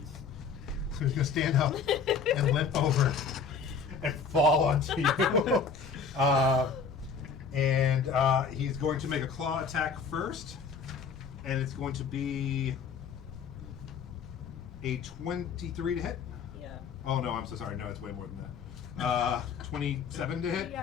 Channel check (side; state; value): right; quieter; 5.7 dB